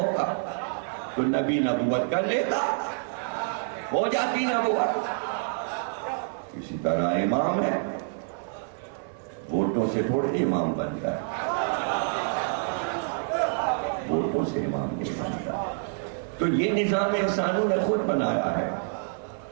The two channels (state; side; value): silent; left; 56 dB below the other